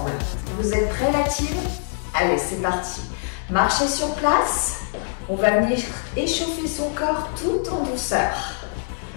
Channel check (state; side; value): silent; right; 61 dB below the other